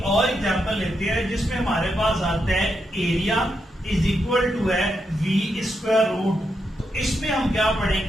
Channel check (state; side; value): normal; both; correlation 0.83